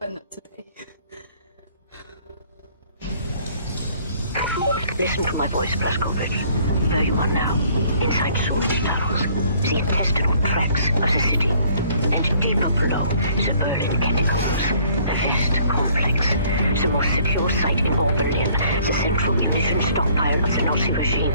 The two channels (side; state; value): both; inverted; correlation -0.60